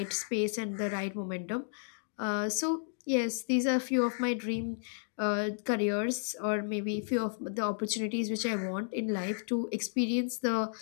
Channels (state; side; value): silent; right; digital silence